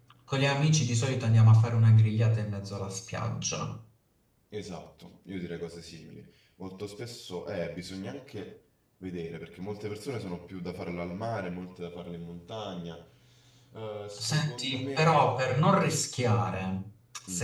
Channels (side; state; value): both; identical; correlation 1.00